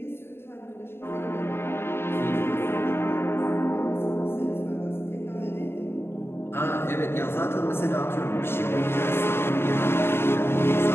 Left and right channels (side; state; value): right; late; 0.11 ms